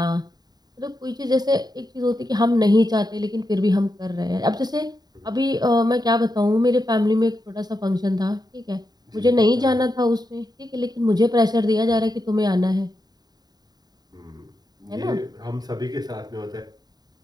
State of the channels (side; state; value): left; late; 0.20 ms